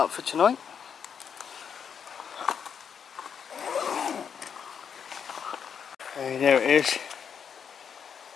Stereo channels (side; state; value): right; quieter; 7.3 dB